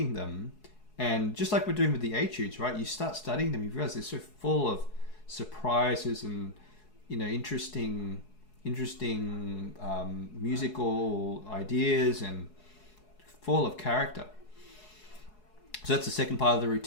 them, and just like we're doing with the Etudes, right? You start studying them, you realize they're so full of surprises and interesting musical ideas and full of character. So that's the second part of the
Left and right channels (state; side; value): late; right; 4.7 ms